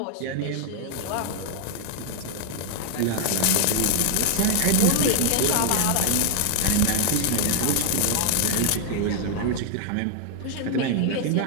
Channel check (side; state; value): both; different; correlation 0.00